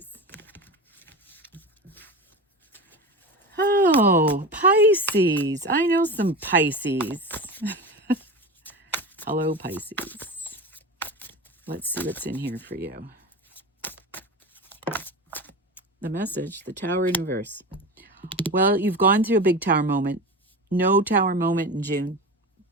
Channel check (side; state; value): both; normal; correlation 0.27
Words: Oh, Pisces. I know some Pisces. Hello, Pisces. Let's see what's in here for you. The message, the Tower in reverse. Well, you've gone through a big tower moment. No tower moment in June.